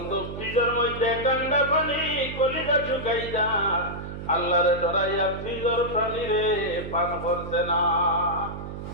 ফ্রিজের মধ্যে ঠান্ডা পানি কলিজা শুকাই যা আল্লাহরে ডরাইয়া ফ্রিজের পানি রে পান করছে না।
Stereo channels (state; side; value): noise; right; hum, 9 dB below the sound